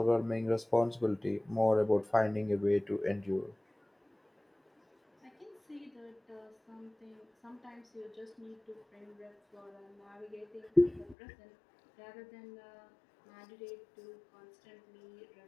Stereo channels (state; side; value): drops out; right; at 11.2 s